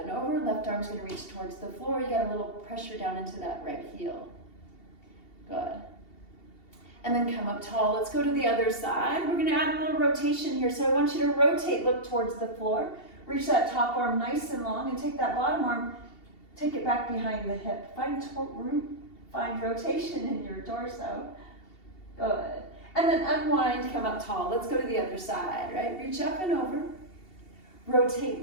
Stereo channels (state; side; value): late; right; 2.7 ms